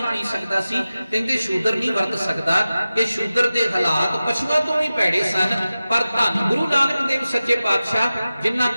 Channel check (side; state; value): both; inverted; correlation -0.95